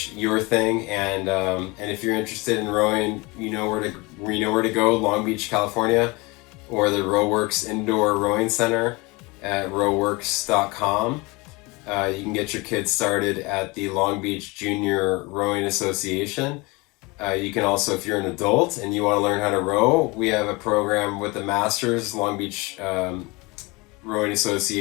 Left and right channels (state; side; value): quieter; right; 25.4 dB